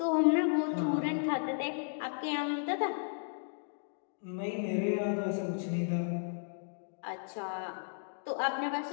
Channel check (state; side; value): silent; right; digital silence